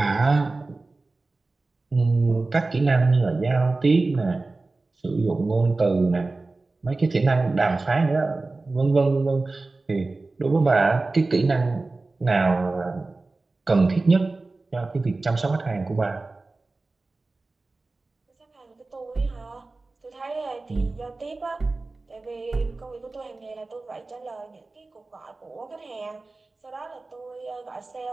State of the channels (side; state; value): left; quieter; 3.4 dB